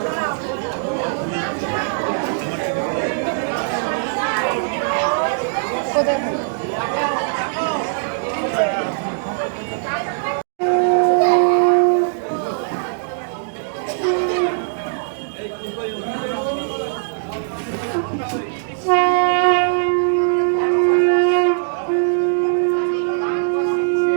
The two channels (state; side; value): silent; left; digital silence